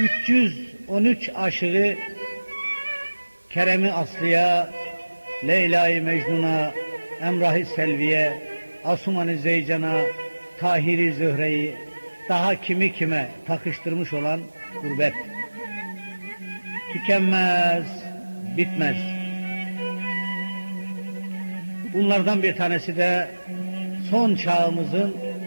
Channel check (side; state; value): both; inverted; correlation -1.00